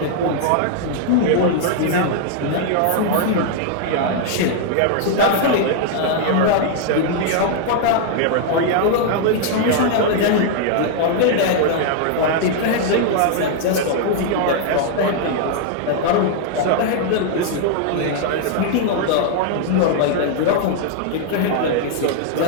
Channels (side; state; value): both; different; correlation 0.00